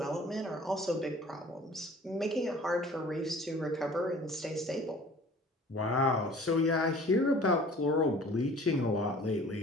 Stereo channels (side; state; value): both; normal; correlation 0.48